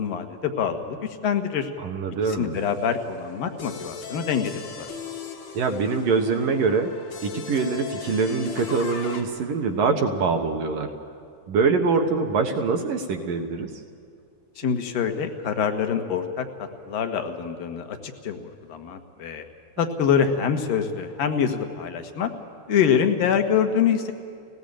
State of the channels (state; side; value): late; left; 11 ms